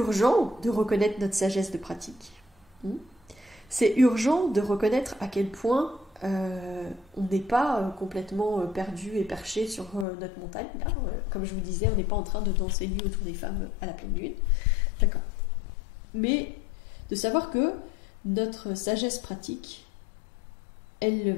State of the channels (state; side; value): drops out; right; at 10.1 s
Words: de reconnaître notre sagesse de pratique. C'est urgent de reconnaître à quel point on n'est pas complètement perdu et perché sur notre montagne. Là. Comme je vous disais, on n'est pas en train de danser nu autour des femmes à la pleine lune. D'accord. Mais de savoir que notre sagesse pratique, elle